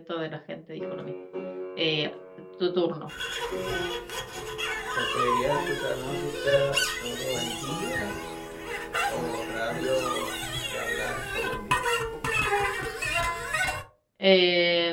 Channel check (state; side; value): identical; both; correlation 1.00